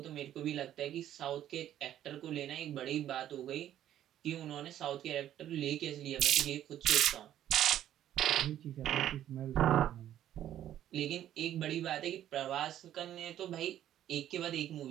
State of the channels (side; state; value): left; quieter; 11.6 dB